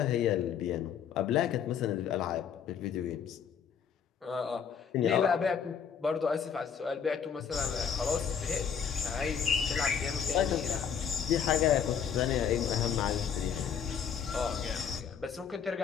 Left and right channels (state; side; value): quieter; right; 7.5 dB